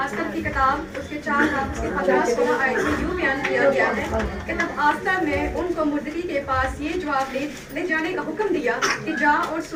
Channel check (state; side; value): identical; both; correlation 1.00